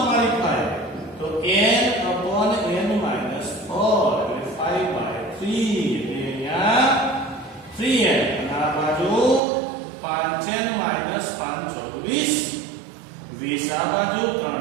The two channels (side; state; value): left; drops out; at 9.4 s